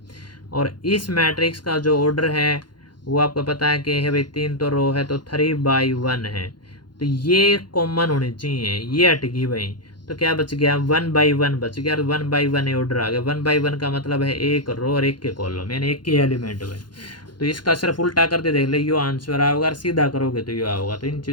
और इस मैट्रिक्स का जो ऑर्डर है वो आपको पता है कि है भाई 3 तो रो है तो 3/1 है, तो ये कॉमन होनी चाहिए, ये हट गई भाई। तो क्या बच गया 1/1 बच गया, 1/1 ऑर्डर आ गया। 1/1 का मतलब है एक रो और एक के कॉलम, यानी एक के एलिमेंट में। तो इसका सिर्फ उल्टा करके देख ले, यो आंसर आओगा, और सीधा करोगे तो यो आओगा। तो इन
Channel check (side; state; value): right; late; 0.71 ms